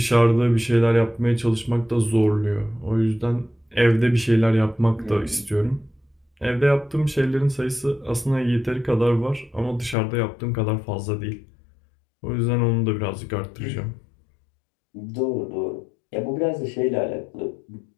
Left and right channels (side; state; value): right; drops out; at 10.0 s